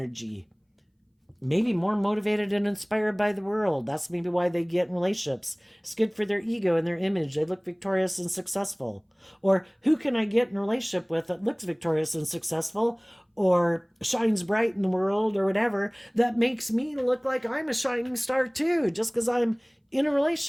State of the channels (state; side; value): identical; both; correlation 1.00